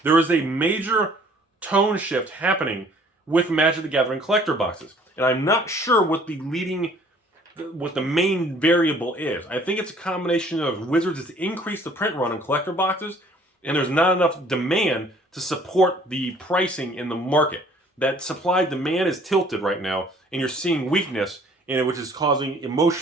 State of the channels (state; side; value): normal; both; correlation 0.56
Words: There is a major tone shift happening with Magic the Gathering collector boxes. And I'm not sure what the main variable is. I think it's a combination of Wizards has increased the print run on collector boxes, and there's not enough demand to support the pricing in the market. That supply-demand is tilted right now, and you're seeing weakness in it, which is causing